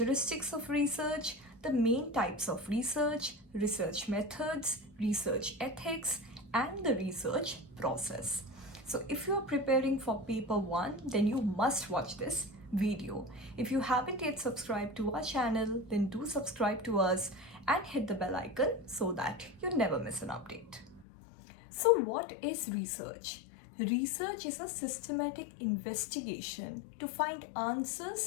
of research, the main types of research, research methods, research ethics, and the research process. So if you are preparing for paper 1, then you must watch this video. If you haven't yet subscribed to our channel, then do subscribe to us and hit the bell icon so that you never miss an update. So what is research? Research is a systematic investigation to find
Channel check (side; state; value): right; drops out; at 21.1 s